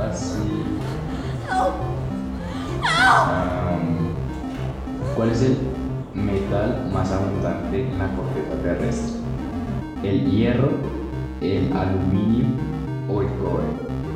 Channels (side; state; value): both; identical; correlation 1.00